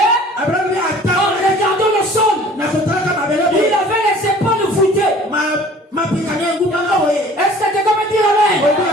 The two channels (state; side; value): normal; both; correlation 0.49